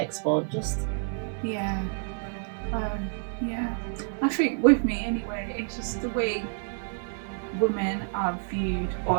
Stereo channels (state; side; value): silent; left; 59 dB below the other